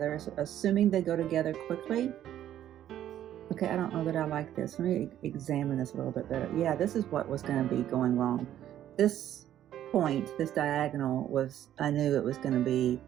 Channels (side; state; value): left; quieter; 11.5 dB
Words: assuming they go together quickly. Okay, I don't know that I like this. Let me examine this a little bit better. Yeah, this is what was gonna be going wrong. This point, this diagonal was, I knew it was gonna be